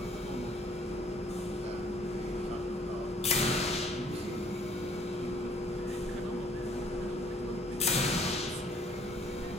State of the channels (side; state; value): both; normal; correlation 0.60